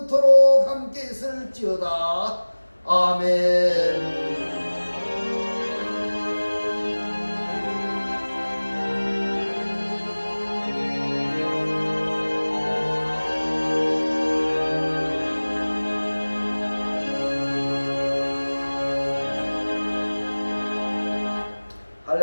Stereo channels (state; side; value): inverted; both; correlation -1.00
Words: 함께 있을지어다. 아멘.